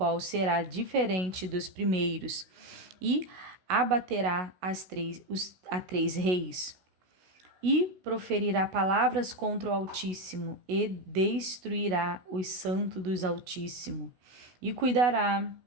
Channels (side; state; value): left; late; 16 ms